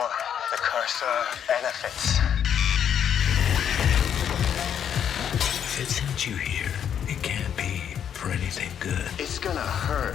the cursor benefits. If it sent you here, it can't be for anything good. It's gonna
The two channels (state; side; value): quieter; right; 8.8 dB